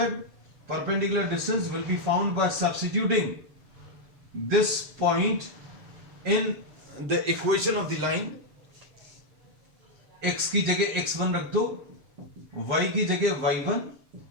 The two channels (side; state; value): left; late; 7.4 ms